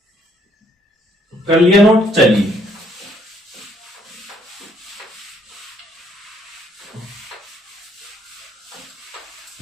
कर लिया नोट? चलिए,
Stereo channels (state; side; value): normal; both; correlation 0.67